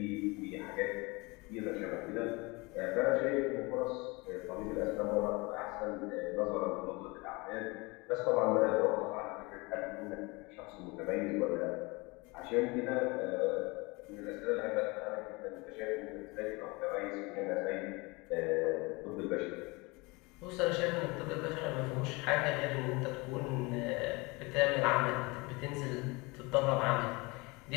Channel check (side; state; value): right; quieter; 25.7 dB